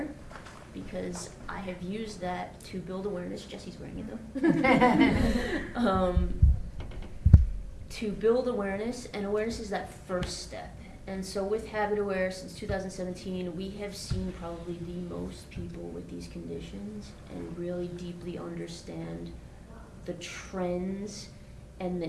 because I have used that to build awareness. Jesse's wearing it though. To build awareness, and awareness is that first step. And so with Habit Aware since 2017, we have seen probably the most people with these conditions and really deeply understand the trends and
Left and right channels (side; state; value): both; identical; correlation 1.00